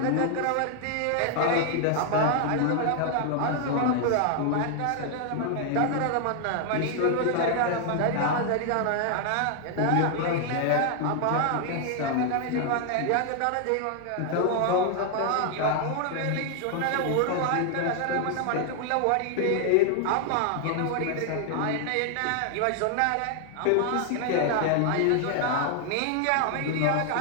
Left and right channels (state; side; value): different; both; correlation 0.00